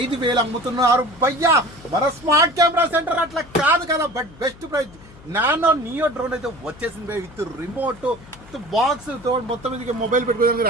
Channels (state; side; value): noise; left; hum, 22 dB below the sound